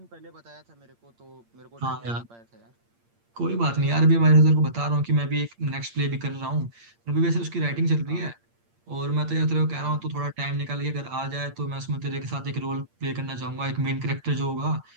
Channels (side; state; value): left; late; 8.7 ms